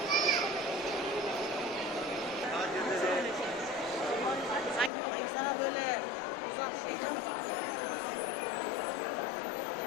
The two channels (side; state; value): right; drops out; at 4.9 s